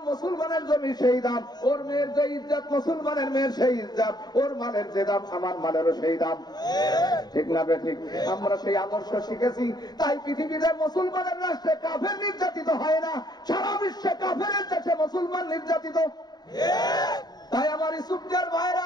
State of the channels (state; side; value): late; right; 0.20 ms